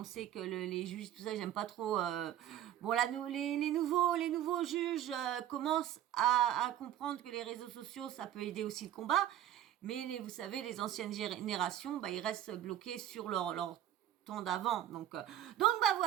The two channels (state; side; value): quieter; left; 11.8 dB